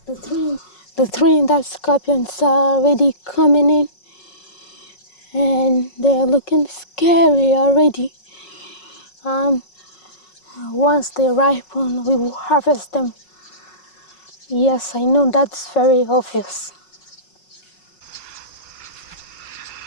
The Trinidad scorpions are already coming in, and they're looking scary already. Once they ripen, we will harvest them. Yes, I know that's very obvious.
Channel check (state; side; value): late; right; 5.4 ms